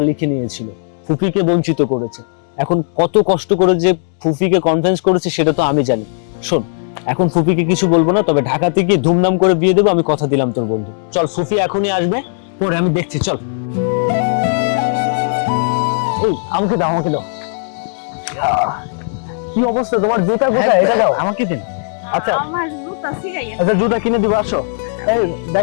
লিখে নিয়েছিল, ফুফিকে বঞ্চিত করেছে। এখন কত কষ্ট করে যে ফুফিকে কনভিন্স করেছে সেটা তো আমি জানি। শোন, এখন ফুফিকে কিছু বলবো না, তবে ঢাকাতে গিয়ে ধুমধাম করে বিয়ে দেবো, আমি কথা দিলাম তোর বন্ধু। চল, ফুফি এখনই আসবে, পরে আমি দেখছি। চল, এই আমাকে দাও, আমাকে দাও। কি অবস্থা তোমার? জুতা কোথায়? এটা দাও আমাকে দিন। আচ্ছা আমার জুতা ছিঁড়াইয়া। আচ্ছা, জুতা কিনে দিবো, আসো। এই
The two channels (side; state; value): right; silent; digital silence